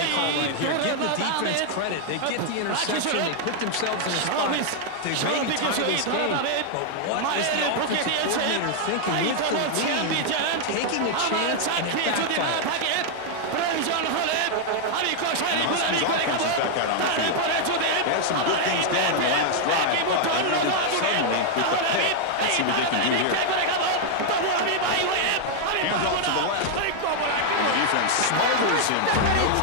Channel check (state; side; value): different; both; correlation 0.00